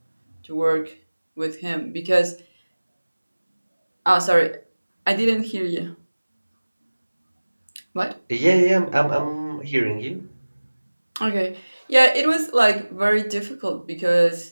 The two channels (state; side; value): inverted; both; correlation -1.00